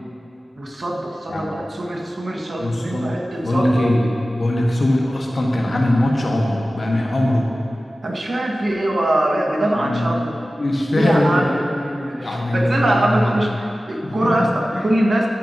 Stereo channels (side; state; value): both; normal; correlation 0.95